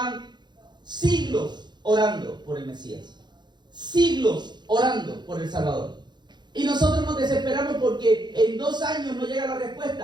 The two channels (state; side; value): late; left; 0.21 ms